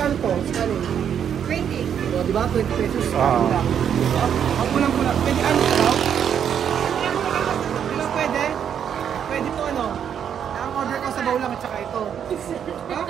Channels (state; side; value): quieter; left; 8.5 dB